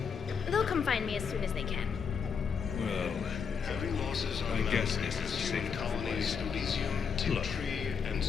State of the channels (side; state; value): right; quieter; 6.4 dB